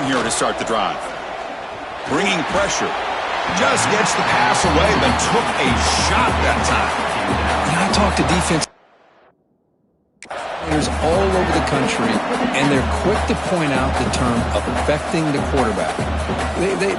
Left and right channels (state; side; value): identical; both; correlation 1.00